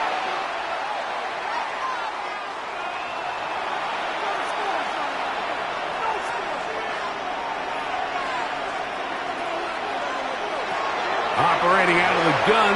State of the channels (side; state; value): both; identical; correlation 1.00